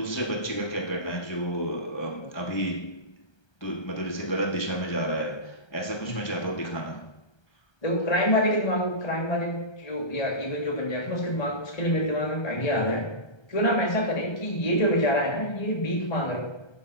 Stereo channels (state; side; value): late; right; 1.3 ms